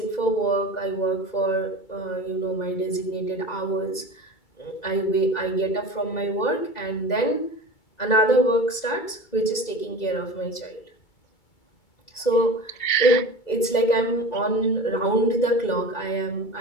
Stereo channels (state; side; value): late; right; 2.2 ms